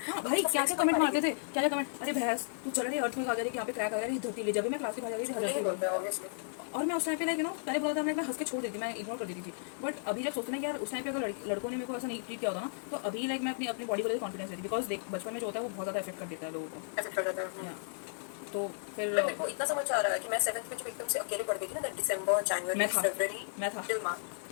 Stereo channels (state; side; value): silent; right; 55 dB below the other